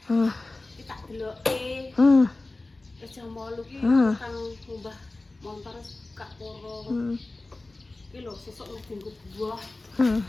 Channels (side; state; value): right; quieter; 3.1 dB